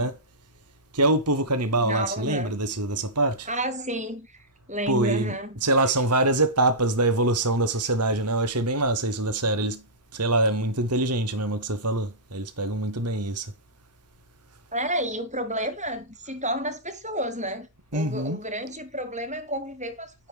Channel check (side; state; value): both; normal; correlation -0.15